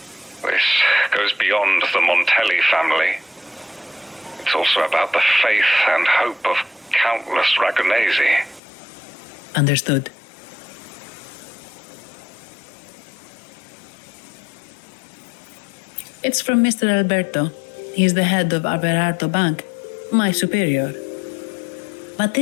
This goes beyond the Montelli family. It's also about the faith and hope of countless Ragonesi. Understood. It's from Mr. Alberto. He's the head of Averardo Bank, my superior. But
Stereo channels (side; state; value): right; drops out; at 8.6 s